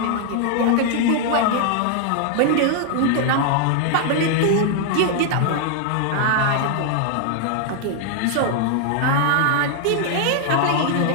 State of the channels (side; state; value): both; different; correlation 0.00